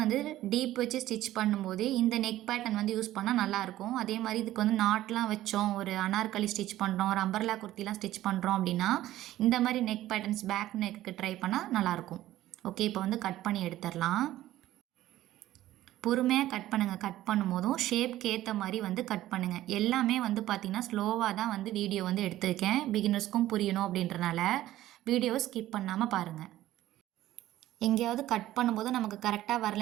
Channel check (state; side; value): quieter; left; 14.5 dB